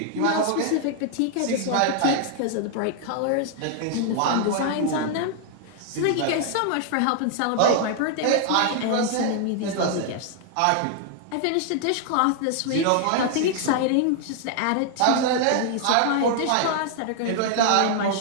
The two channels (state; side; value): different; both; correlation 0.00